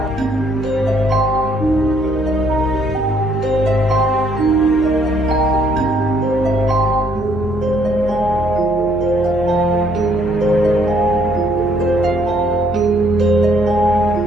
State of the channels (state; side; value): noise; left; hum, 12 dB below the sound